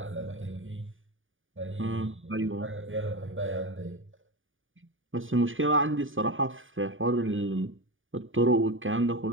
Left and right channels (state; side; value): late; left; 0.57 ms